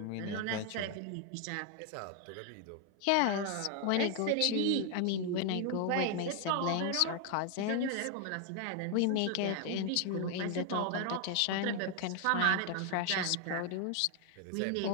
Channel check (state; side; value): different; both; correlation 0.00